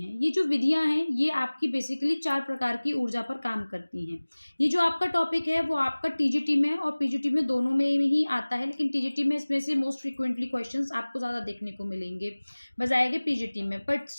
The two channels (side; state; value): both; inverted; correlation -1.00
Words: हैं। ये जो विधियां हैं ये आपकी बेसिकली 4 प्रकार की ऊर्जा पर काम करती हैं। ये जो आपका टॉपिक है वो आपका टीजीटी में और पीजीटी में दोनों में ही आता है, लेकिन टीजीटी में इसमें से मोस्ट फ्रीक्वेंटली क्वेश्चंस आपको ज़्यादा देखने को मिलेंगे बजाय के पीजीटी में, बट